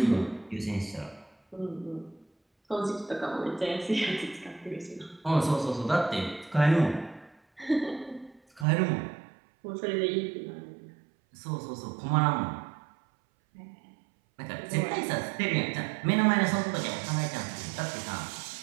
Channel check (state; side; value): drops out; left; at 8.7 s